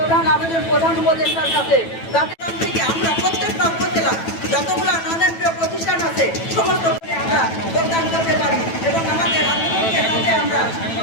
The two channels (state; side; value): late; right; 9.1 ms